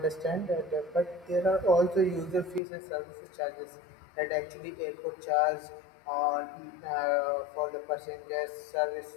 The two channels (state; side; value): drops out; right; at 2.6 s